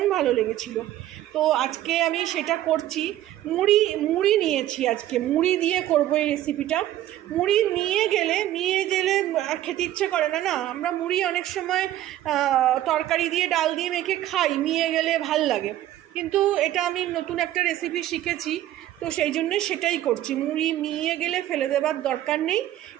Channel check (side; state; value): left; quieter; 13.5 dB